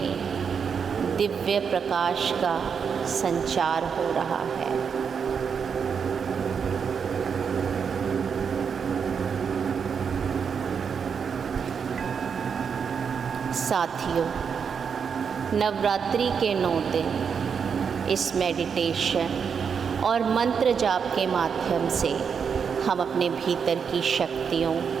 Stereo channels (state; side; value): quieter; left; 6.5 dB